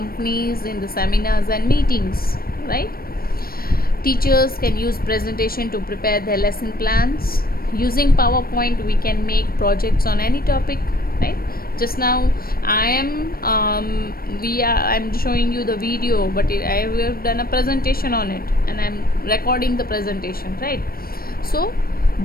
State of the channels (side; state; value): right; late; 0.43 ms